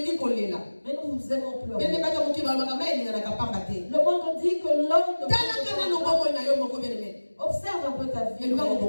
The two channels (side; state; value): both; inverted; correlation -1.00